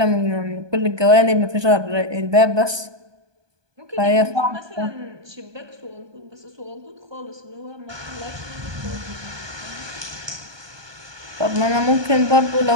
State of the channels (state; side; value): late; left; 1.2 ms